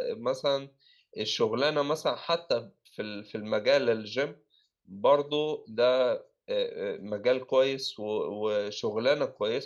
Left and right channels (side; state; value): both; identical; correlation 1.00